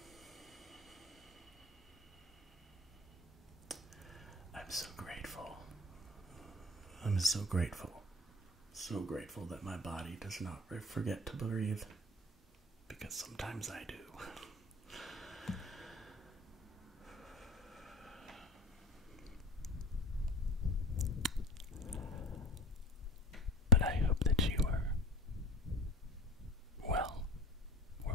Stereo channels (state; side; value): normal; both; correlation 0.37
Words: I'm so grateful. I'm so grateful. So grateful that my body does not forget to breathe. Because sometimes I do. But I hope that you are well,